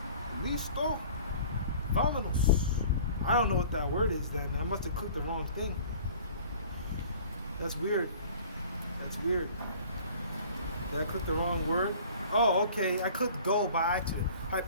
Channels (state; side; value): inverted; both; correlation -0.47